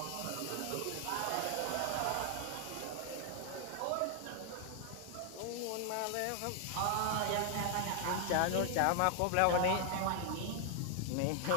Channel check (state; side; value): different; both; correlation 0.00